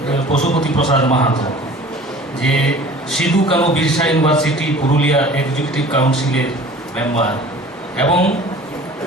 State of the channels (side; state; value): both; normal; correlation 0.45